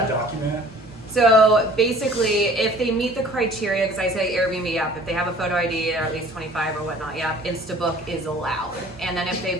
document? So basically, if they meet the criteria, because I say Airbnb app, if they have a photo ID or at least 25 or whatnot, Instabook is allowed. And then if they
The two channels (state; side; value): normal; both; correlation 0.50